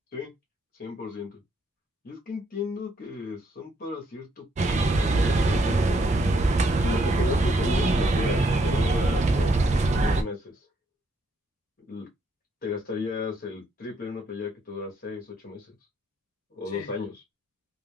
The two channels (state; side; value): normal; both; correlation 0.73